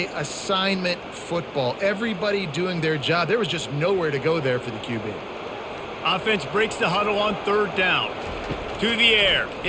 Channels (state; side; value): identical; both; correlation 1.00